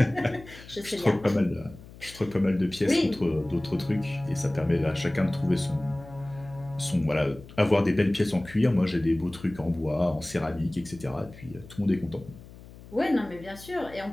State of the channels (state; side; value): noise; left; hum, 18 dB below the sound